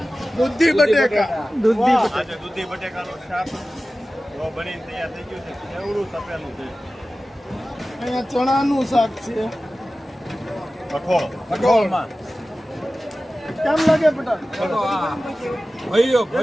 દૂધી બટેકા. આજે દૂધી બટેકાનું શાક બનીને તૈયાર થઈ ગયું છે. કેવડું તપેલું છે. અહીંયા ચણાનું શાક છે. કઠોળમાં કેમ લાગે પટેલ? ભવ્ય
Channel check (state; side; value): normal; both; correlation 0.96